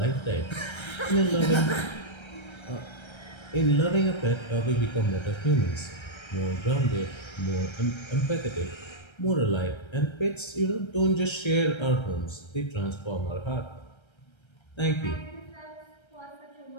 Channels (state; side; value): late; right; 1.3 ms